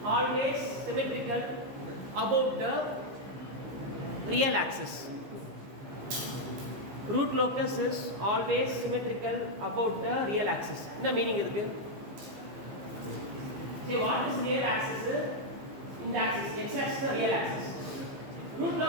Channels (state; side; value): late; left; 15 ms